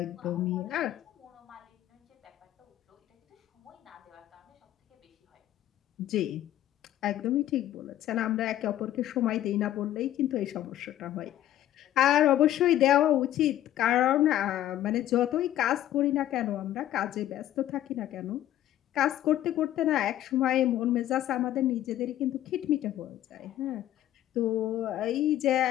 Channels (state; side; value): quieter; right; 12.8 dB